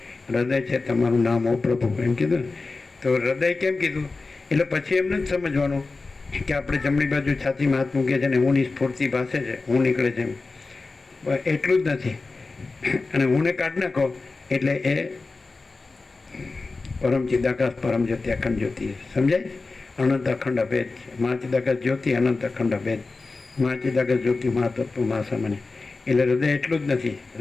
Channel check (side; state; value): right; quieter; 3.8 dB